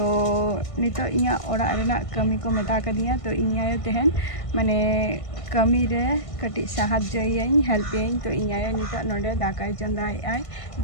नितो इया ओड़ा रेना कमी को मेता कदिया तो इन आयो तेहन माने कमी रे कटी साहाज्ययिन हेल्पयिन तो इन आयो नितो नोडे दाकाय चंदाय आय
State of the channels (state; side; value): late; right; 1.5 ms